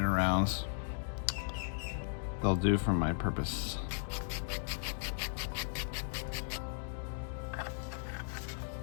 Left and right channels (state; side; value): silent; right; digital silence